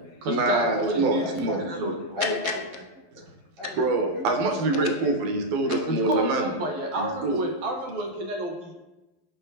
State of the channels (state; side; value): late; left; 11 ms